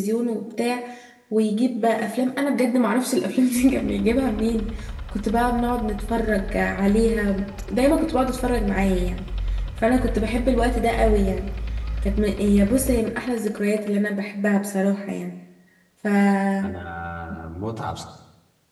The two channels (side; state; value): both; identical; correlation 1.00